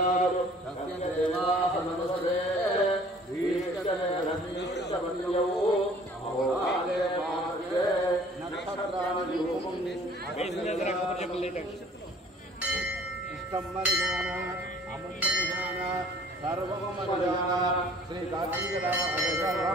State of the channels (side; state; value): both; normal; correlation 0.52